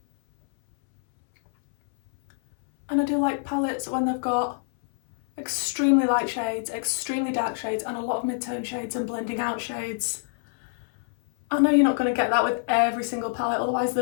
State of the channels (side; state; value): right; silent; 61 dB below the other